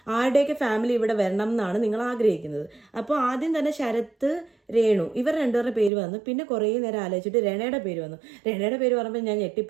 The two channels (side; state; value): left; drops out; at 5.9 s